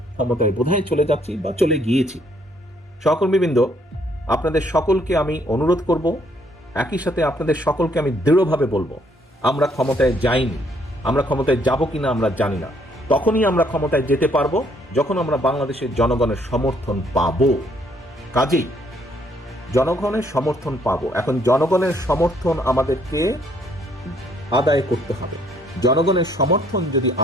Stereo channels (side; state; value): both; normal; correlation 0.67